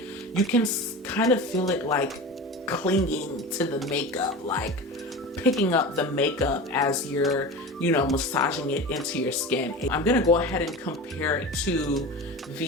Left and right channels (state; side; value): normal; both; correlation 0.30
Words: you can kind of feel it like clinging to the makeup, like picking up the makeup as you're you know, massaging it into your skin. I'm gonna go ahead and compare it to